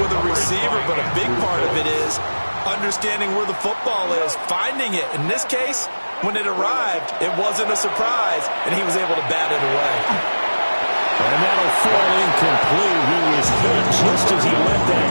with a receiver, but a big part of it is understanding where the football is, finding it. In this case, when it arrived, it wasn't a surprise, and he was able to bat it away. And that'll fall incomplete. He was hit just as he let that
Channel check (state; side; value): inverted; both; correlation -1.00